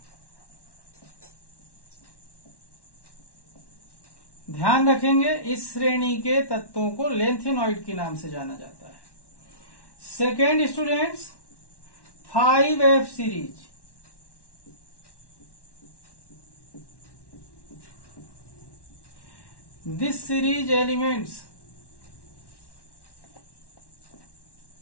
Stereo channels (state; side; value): late; right; 1.1 ms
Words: ध्यान रखेंगे, इस श्रेणी के तत्वों को लेंथेनॉइड के नाम से जाना जाता है। Second students, 5F series. This series elements